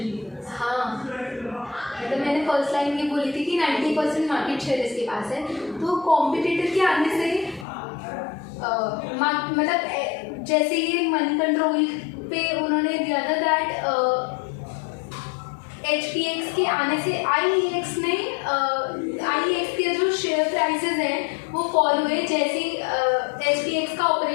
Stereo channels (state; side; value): drops out; right; at 7.7 s